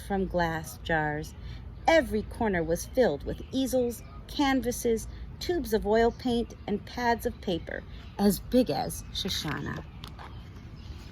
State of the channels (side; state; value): both; identical; correlation 1.00